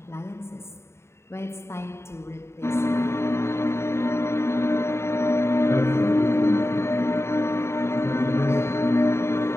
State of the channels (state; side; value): late; right; 0.13 ms